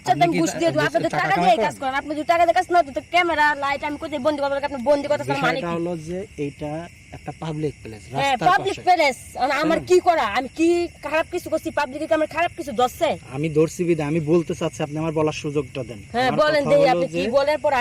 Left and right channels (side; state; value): both; identical; correlation 1.00